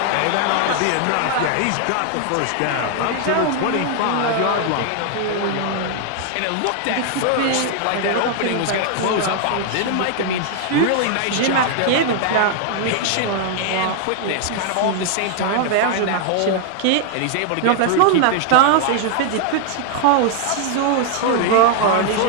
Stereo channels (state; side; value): different; both; correlation 0.00